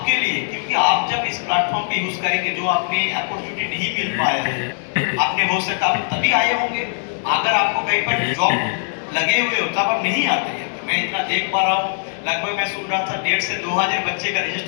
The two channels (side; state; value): right; silent; digital silence